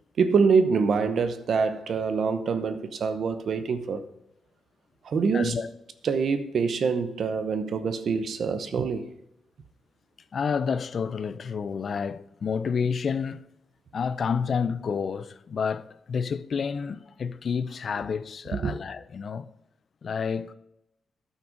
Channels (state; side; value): normal; both; correlation 0.78